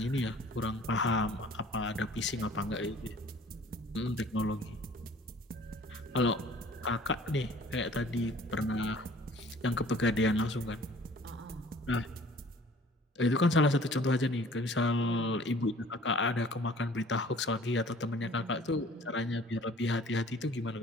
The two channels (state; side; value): normal; both; correlation 0.51